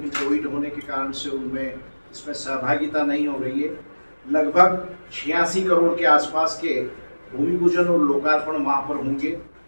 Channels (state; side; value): inverted; both; correlation -1.00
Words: कोविड होने के कारण से उनमें इसमें सहभागिता नहीं हो रही है। लगभग 86 करोड़ के आसपास के भूमि पूजन और लोकार्पण वहाँ पर होंगे।